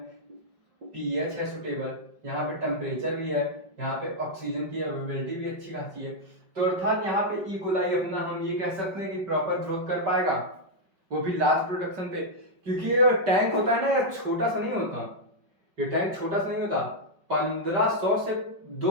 पीएच है सुटेबल, यहाँ पे टेम्परेचर भी है, यहाँ पे ऑक्सीजन की अवेलेबिलिटी भी अच्छी खासी है। तो अर्थात यहाँ पे ई कोलाई अपना हम ये कह सकते हैं कि प्रॉपर ग्रोथ कर पाएगा, वो भी लार्ज प्रोडक्शन पे, क्योंकि ये टैंक होता है ना यार, छोटा सा नहीं होता, ये टैंक छोटा सा नहीं होता, 1500 से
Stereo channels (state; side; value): late; left; 5.2 ms